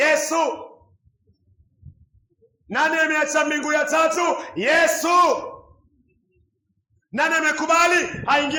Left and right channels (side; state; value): both; identical; correlation 1.00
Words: Nani ameacha mbingu ya tatu? Yesu. Nani amekubali